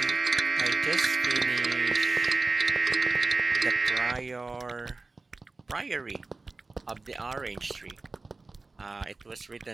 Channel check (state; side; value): quieter; left; 3.6 dB